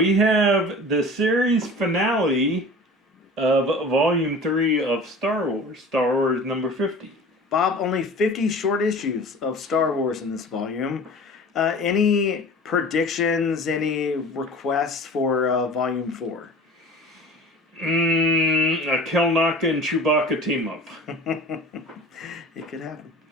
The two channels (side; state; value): both; normal; correlation 0.40